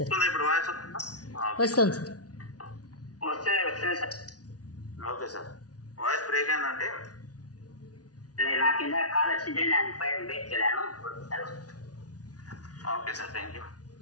ఇప్పుడు వాయిస్ వస్తుంది సార్. వస్తుంది sir. Okay sir. Voice break అయిందంటే నా కింద కాల్ వచ్చింటే నేను పైన బ్రేక్ చేయలేను. Okay sir, thank you.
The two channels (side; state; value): right; late; 0.68 ms